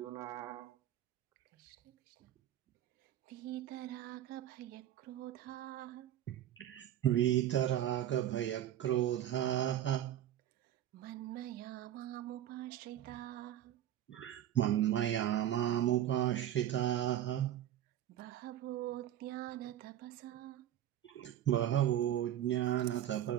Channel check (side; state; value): left; quieter; 11.7 dB